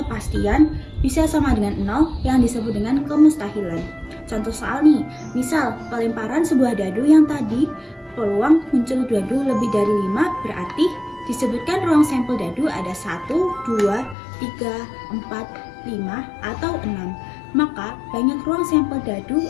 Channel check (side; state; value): right; drops out; at 14.2 s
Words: bisa sama dengan 0 yang disebut dengan kemustahilan. Contoh soal nih, misal pelemparan sebuah dadu yang tadi peluang muncul dadu lebih dari 5, berarti disebutkan ruang sampel dadu ada 1, 2, 3, 4, 5, atau 6. Maka banyak ruang sampel dadu